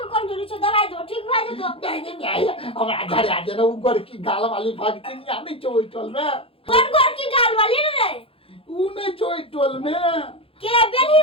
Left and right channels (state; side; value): late; right; 0.27 ms